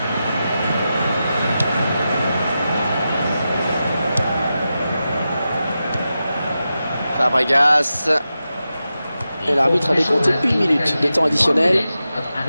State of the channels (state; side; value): inverted; both; correlation -0.91